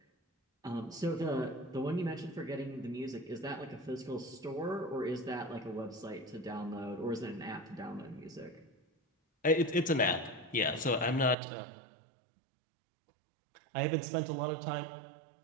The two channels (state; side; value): drops out; left; at 11.4 s